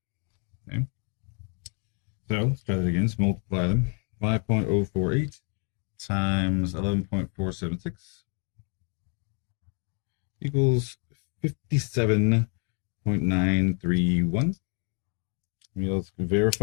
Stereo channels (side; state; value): right; quieter; 39.9 dB